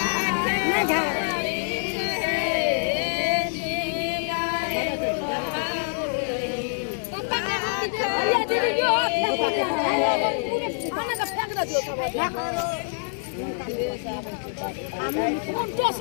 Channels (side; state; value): right; silent; digital silence